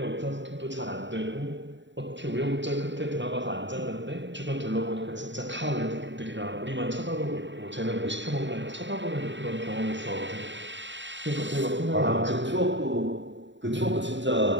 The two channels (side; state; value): left; late; 0.53 ms